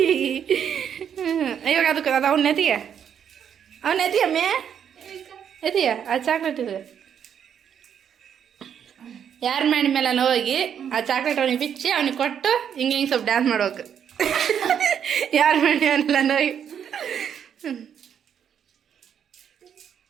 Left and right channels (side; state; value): left; quieter; 8.5 dB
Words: ಇವಾಗ ಅದಕ್ಕೆ ಅದು ಅವ್ನ ಎತ್ತಿಯ ಮೇ ಎತ್ತಿಯ ಆ ಚಾಕ್ಲೇಟ್ ಇದೆ ಯಾರ ಮಾಡಿ ಮೇಲೆ ಹೋಗಿ ಆ ಚಾಕ್ಲೇಟ್ ಅವನಿಗೆ ಬಿಚ್ಚಿ ಅವ್ನಿಗೆ ಕೊಟ್ಟು ಹಿಂಗೆ ಸ್ವಲ್ಪ ಡ್ಯಾನ್ಸ್ ಮಾಡ್ಬೇಕು. ಯಾರ ಮಾಡಿ ಮೇಲೆಲ್ಲ ಹೋಗಿ